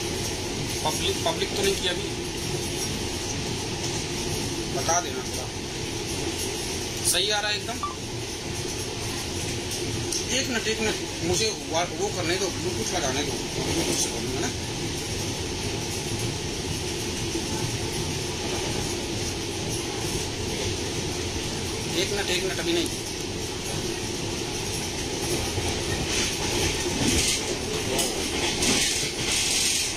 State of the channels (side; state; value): both; identical; correlation 1.00